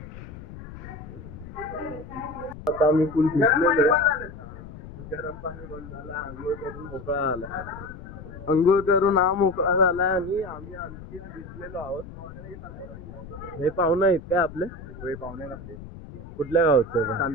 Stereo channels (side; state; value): left; noise; rumble, 14 dB below the sound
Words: आता आम्ही फुल भिजलेलो आहे. गरम पाणी बंद झालं. आंघोळ करून मोकळा झाला. अंघोळ करून हा मोकळा झालाय आणि आम्ही आणखी भिजलेलो आहोत. हे पाहुणे आहेत काय आपले? होय, पाहुणे आहेत आपले. कुठल्या गावचे?